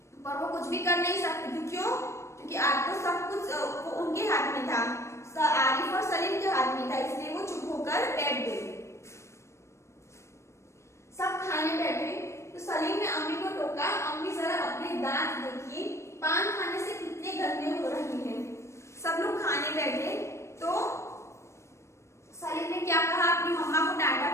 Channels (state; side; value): late; right; 0.13 ms